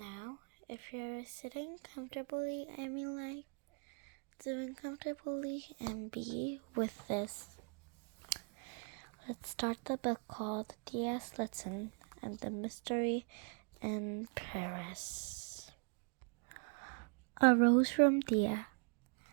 if you're sitting comfortably, doing comfortably and be with this. Let's start the book called Thea, Stilton, and the Mystery in Paris. A Rose from Thea.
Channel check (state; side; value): quieter; left; 38.8 dB